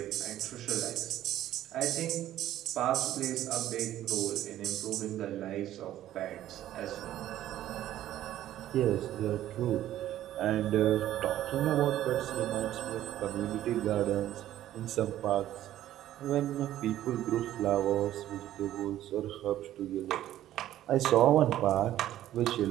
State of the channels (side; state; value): left; quieter; 12.9 dB